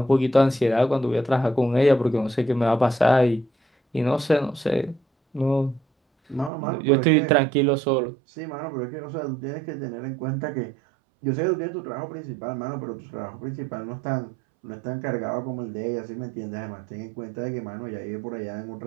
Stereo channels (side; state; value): left; drops out; at 6.5 s